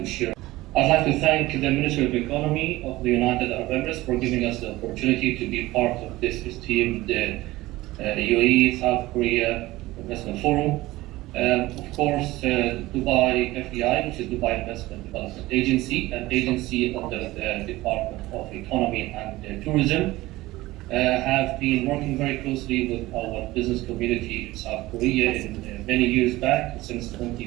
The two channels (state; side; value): quieter; left; 18.4 dB